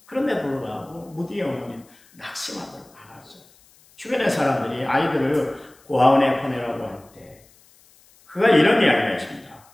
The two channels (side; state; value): left; noise; hiss, 29 dB below the sound